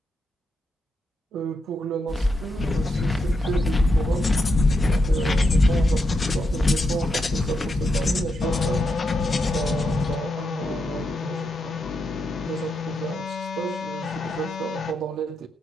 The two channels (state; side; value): normal; both; correlation 0.84